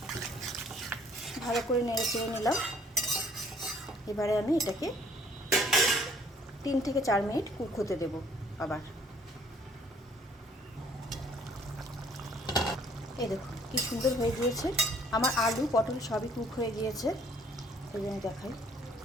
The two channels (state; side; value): normal; both; correlation 0.60